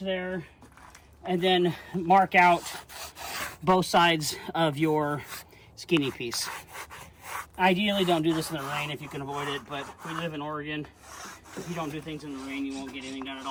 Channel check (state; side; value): identical; both; correlation 1.00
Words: and then mark out both sides of your skinny piece. Ideally, don't do this in the rain if you can avoid it, but we live in Oregon. If you don't do things in the rain, you won't get anything done at